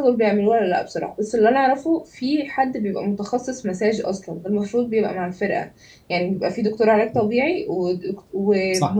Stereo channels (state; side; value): identical; both; correlation 1.00